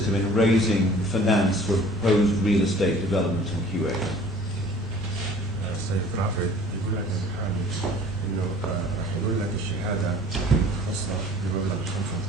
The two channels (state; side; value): normal; both; correlation 0.50